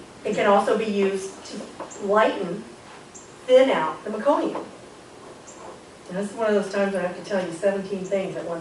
It can also be used to lighten, thin out the meconium. And this is one of those times when I have to tell you 17 things at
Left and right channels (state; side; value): identical; both; correlation 1.00